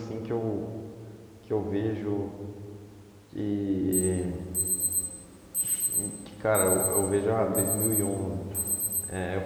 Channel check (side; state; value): both; identical; correlation 1.00